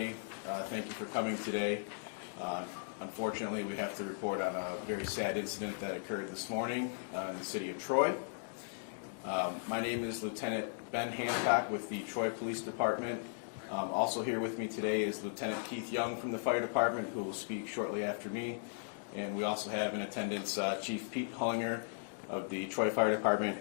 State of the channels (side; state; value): right; silent; digital silence